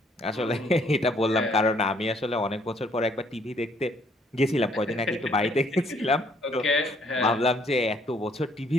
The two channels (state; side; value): normal; both; correlation 0.65